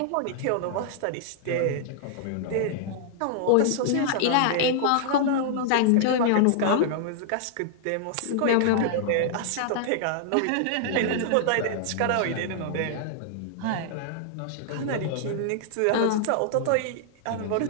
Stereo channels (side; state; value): both; different; correlation -0.01